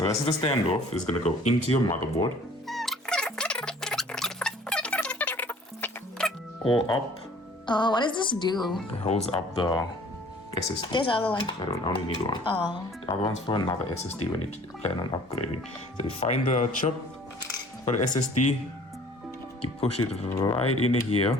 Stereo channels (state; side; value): normal; both; correlation 0.52